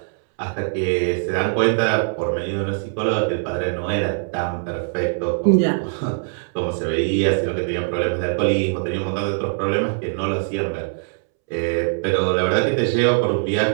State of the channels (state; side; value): silent; left; 64 dB below the other